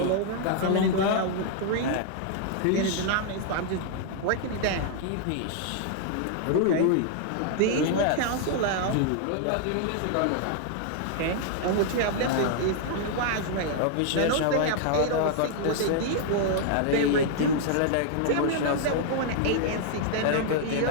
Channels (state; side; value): different; both; correlation -0.01